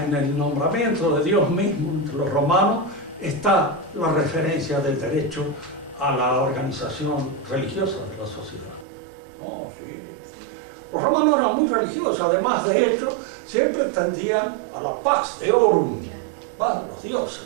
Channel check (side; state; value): left; drops out; at 8.8 s